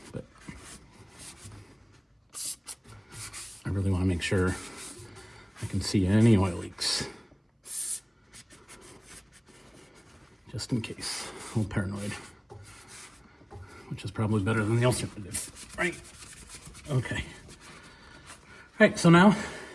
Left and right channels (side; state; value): both; identical; correlation 1.00